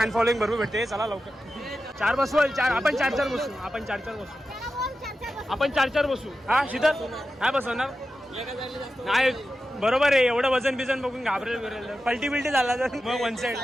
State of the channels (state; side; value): normal; both; correlation 0.92